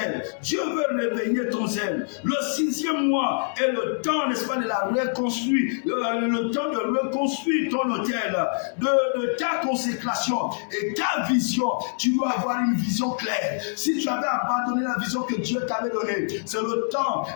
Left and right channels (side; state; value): right; silent; 62 dB below the other